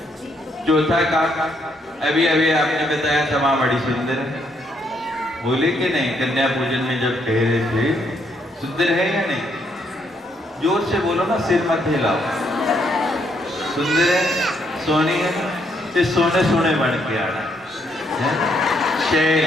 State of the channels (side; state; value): both; normal; correlation 0.73